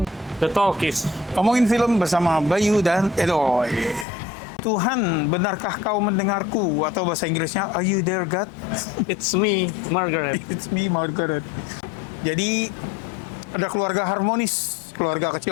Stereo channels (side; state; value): right; drops out; at 4.0 s